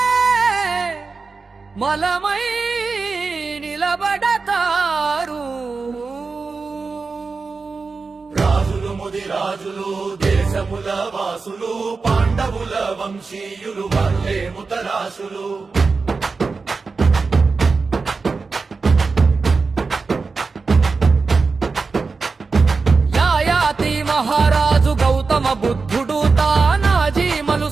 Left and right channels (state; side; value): quieter; left; 4.4 dB